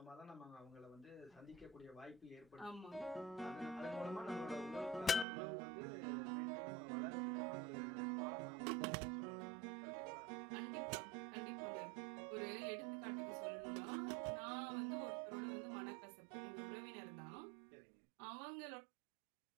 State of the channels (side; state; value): left; drops out; at 5.2 s